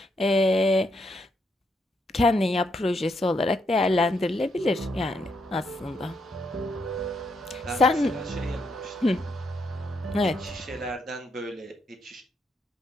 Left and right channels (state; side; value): normal; both; correlation 0.77